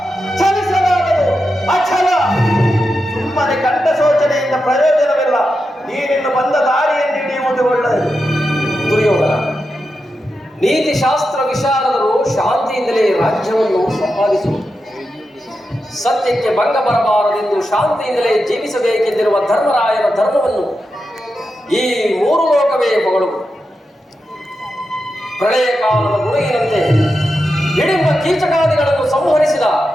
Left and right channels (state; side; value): normal; both; correlation 0.89